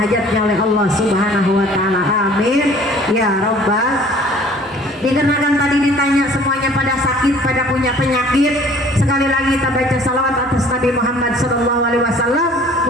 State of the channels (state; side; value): normal; both; correlation 0.52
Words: oleh Allah Subhanahu wa taala, amin ya rabbal. Dikarenakan tadi ditanya semuanya pada sakit, pada punya penyakit, sekali lagi kita baca salawat atas Nabi Muhammad sallallahu alaihi wasallam,